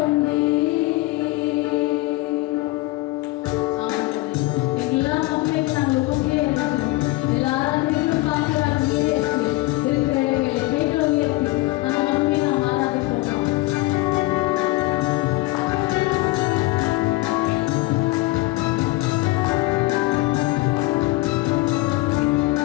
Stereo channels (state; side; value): quieter; right; 20.2 dB